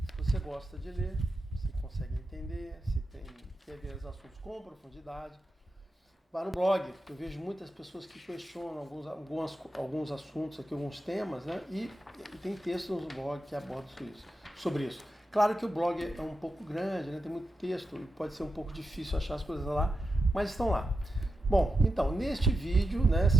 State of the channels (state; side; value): normal; both; correlation 0.89